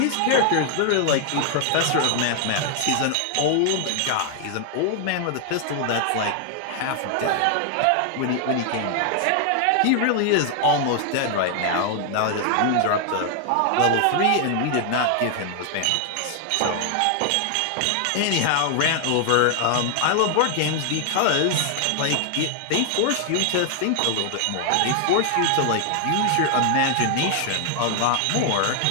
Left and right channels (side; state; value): both; different; correlation 0.00